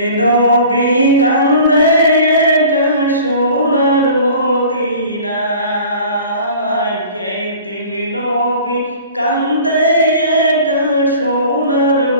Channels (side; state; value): both; inverted; correlation -0.45